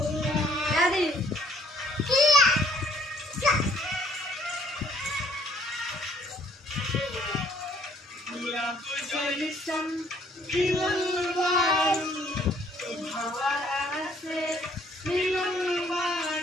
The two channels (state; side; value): normal; both; correlation 0.63